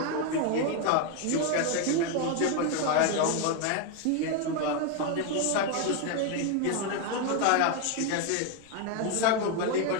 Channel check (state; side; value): different; both; correlation 0.01